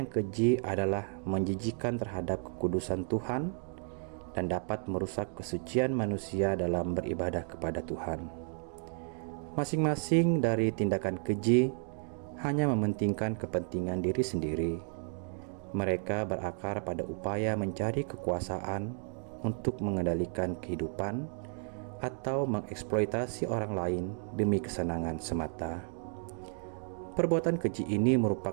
keji adalah menjijikan terhadap kekudusan Tuhan dan dapat merusak kesucian manusia dalam beribadah kepada Tuhan. Masing-masing dari tindakan keji hanya mementingkan kepentingan diri sendiri. Mereka berakar pada upaya mencari kekuasaan untuk mengendalikan kehidupan atau mengeksploitasi orang lain demi kesenangan semata. Perbuatan keji ini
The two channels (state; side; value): silent; left; 56 dB below the other